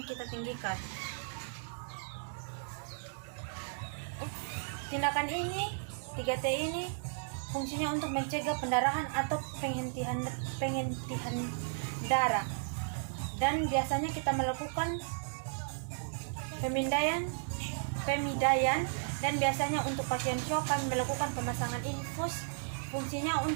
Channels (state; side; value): silent; left; 55 dB below the other